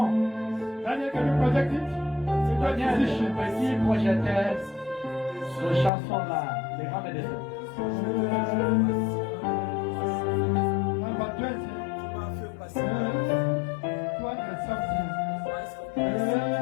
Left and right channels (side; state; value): right; drops out; at 5.9 s